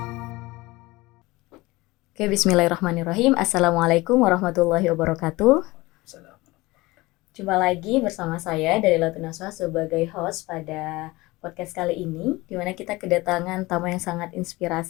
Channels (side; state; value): right; quieter; 21.1 dB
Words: Oke, bismillahirrahmanirrahim. Assalamualaikum warahmatullahi wabarakatuh. Jumpa lagi bersama saya dari Latunaswa sebagai host pada podcast kali ini, di mana kita kedatangan tamu yang sangat